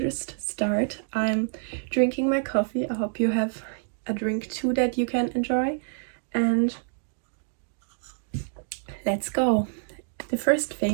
just start. I'm drinking my coffee. I hope you have a drink too that you can enjoy. And let's go. The first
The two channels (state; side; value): silent; left; digital silence